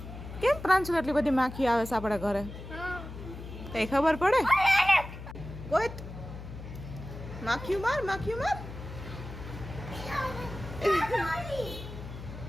કેમ પ્રાંશુલ એટલી બધી માખી આવે છે આપણા ઘરે? કઈ ખબર પડે? કોઈ માખ્યું માર.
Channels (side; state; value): left; noise; hum, 11 dB below the sound